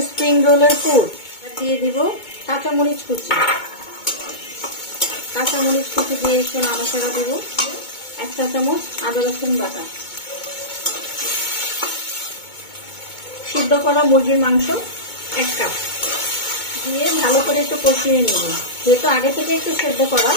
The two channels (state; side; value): late; right; 2.2 ms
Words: স্প্রিং রোলের পুর। দিয়ে দিব কাঁচামরিচ কুচি। কাঁচামরিচ কুচি দিয়ে একটু নাড়াচাড়া দিব। 1 চা চামচ আদা রসুন বাটা, সিদ্ধ করা মুরগির মাংস 1 কাপ দিয়ে ভালো করে একটু কষিয়ে নিব, যেহেতু আগে থেকে একটু সেদ্ধ করা।